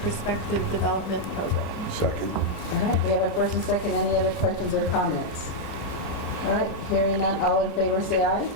Development Program. Second. All right, we have a first and second. Any other questions or comments? All right, hearing none, all in favor say aye.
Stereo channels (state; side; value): late; right; 33 ms